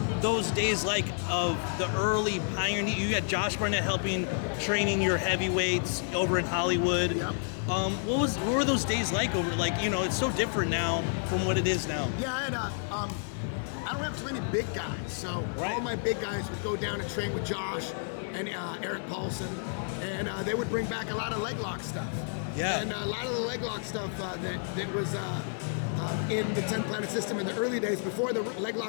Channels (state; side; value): silent; right; 58 dB below the other